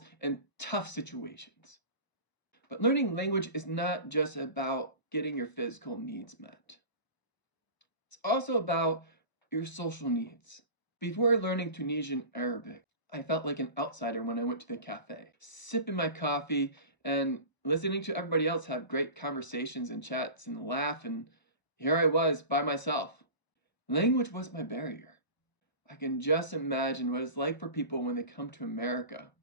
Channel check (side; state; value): right; late; 1.0 ms